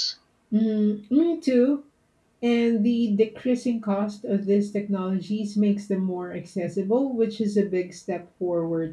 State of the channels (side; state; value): both; identical; correlation 1.00